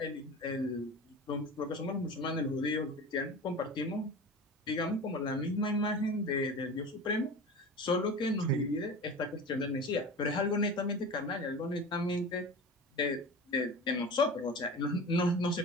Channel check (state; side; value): normal; both; correlation 0.33